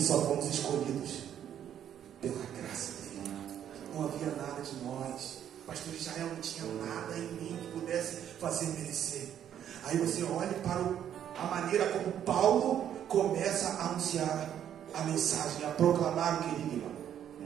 fomos escolhidos pela graça dele. Não havia nada de nós. Pastor Israel não tinha nada em mim que pudesse fazer merecer. Aí você olha para a maneira como Paulo começa a anunciar a mensagem, a proclamar o querigma.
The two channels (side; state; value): left; quieter; 9.9 dB